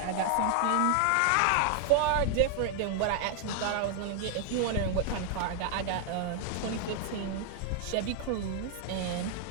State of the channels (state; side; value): different; both; correlation 0.00